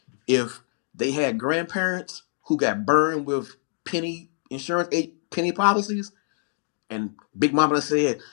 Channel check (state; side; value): silent; right; digital silence